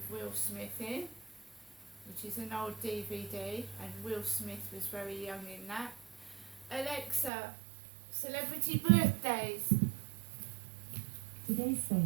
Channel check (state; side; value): drops out; left; at 7.3 s